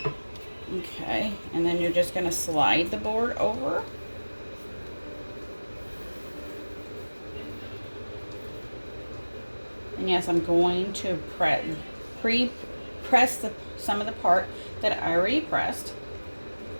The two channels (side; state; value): both; inverted; correlation -1.00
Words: Okay, and then you're just going to slide the board over. And yes, I'm going to pre-press some of the part that I already pressed.